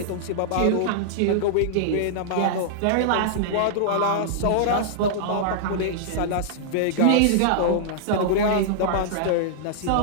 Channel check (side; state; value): both; different; correlation -0.01